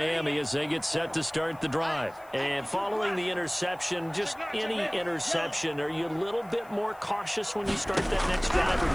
as they get set to start the drive. And following the interception, just any interception, are you a little bit more cautious when you start that next drive, or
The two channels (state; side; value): noise; left; hiss, 27 dB below the sound